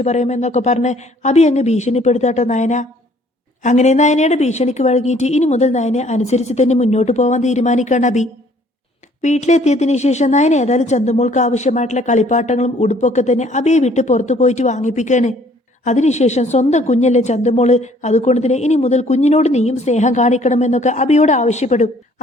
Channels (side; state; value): both; normal; correlation 0.59